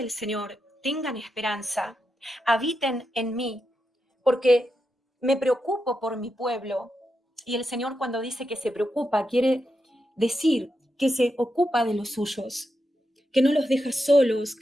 Señor, tengan esperanza, habiten en mí, porque me preocupo por mi pueblo. Y el Señor, cuando dice que se preocupa, quiere decir que se ocupa de los suyos, que no los deja solos,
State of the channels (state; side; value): normal; both; correlation 0.86